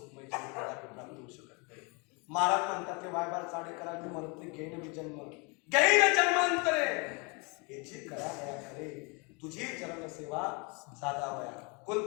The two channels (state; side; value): quieter; right; 31.1 dB